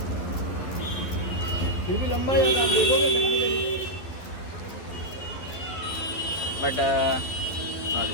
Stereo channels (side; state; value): right; late; 11 ms